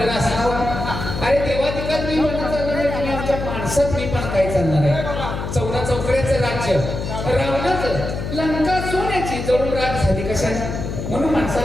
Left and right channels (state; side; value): noise; left; hum, 5 dB below the sound